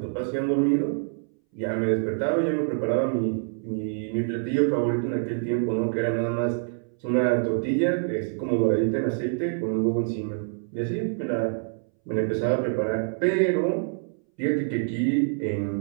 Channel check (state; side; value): silent; left; 61 dB below the other